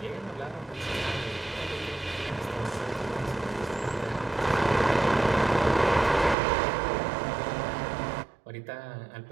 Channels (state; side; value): drops out; left; at 6.4 s